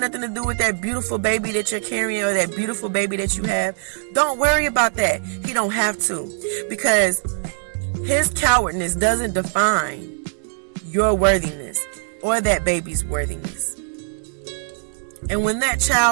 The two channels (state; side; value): silent; left; digital silence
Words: nothing to do with that beautiful baby that you're carrying or that beautiful baby that you have. Don't worry about that. He don't have to. Because his cowardness doesn't define your worthiness or that baby's worthiness. And when that